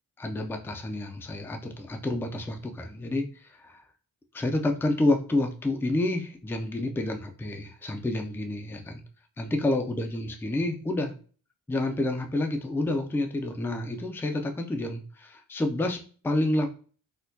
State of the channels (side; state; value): both; normal; correlation 0.81